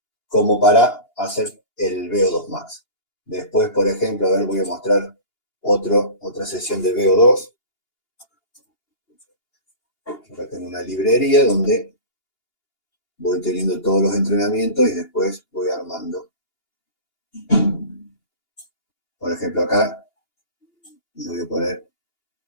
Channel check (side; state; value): right; late; 2.8 ms